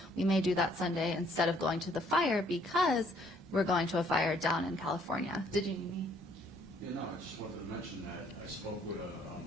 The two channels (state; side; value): normal; both; correlation 0.64